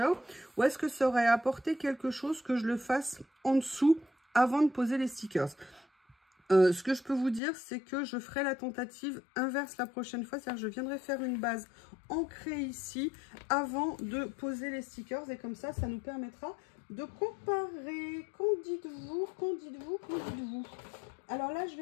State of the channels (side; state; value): right; drops out; at 7.4 s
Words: Ou est-ce que ça aurait apporté quelque chose que je le fasse en dessous avant de poser les stickers? Ce que je peux vous dire, c'est que je ferai la tentative inverse la prochaine fois. C'est-à-dire que je viendrai faire une base ancrée ici avant de poser les stickers. Et comme ça, ça nous permettra de comparer. Qu'en dites-vous? Qu'en dites-vous? Qu'en dites-vous? Alors là, je